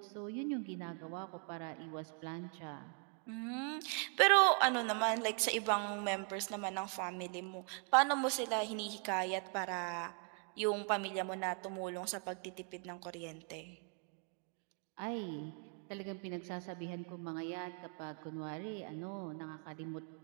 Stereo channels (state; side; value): quieter; left; 39.4 dB